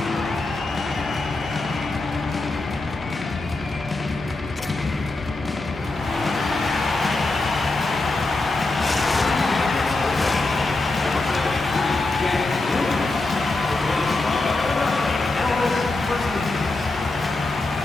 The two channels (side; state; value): right; quieter; 3.1 dB